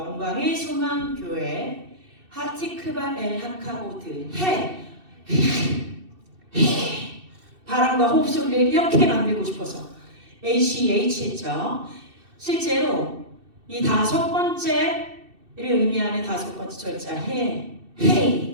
소망교회 하티크바 엘 하카보드 해. 바람과 호흡 소리를 이렇게 만들고 싶어서 ACH 했죠. 실제로 이 다섯 번째를 의미하는 다섯 번째 절자 해인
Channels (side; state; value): left; late; 2.7 ms